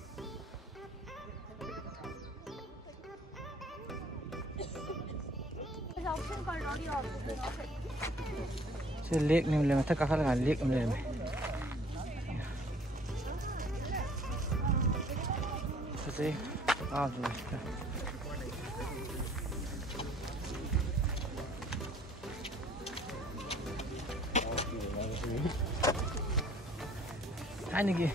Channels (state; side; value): normal; both; correlation 0.56